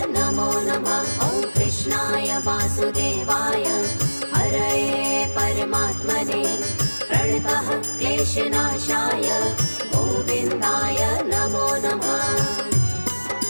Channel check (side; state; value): both; inverted; correlation -1.00